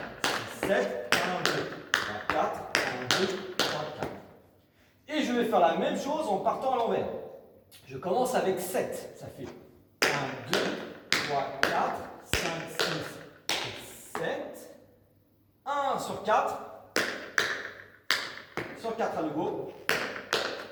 6, 7. 1, 2, 3, 4. 1, 2, 3, 4. Et je vais faire la même chose en partant à l'envers. Je commence avec 7. Ça fait 1, 2, 3, 4, 5, 6, 7. 1 sur 4. Sur 4 à nouveau.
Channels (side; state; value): both; identical; correlation 1.00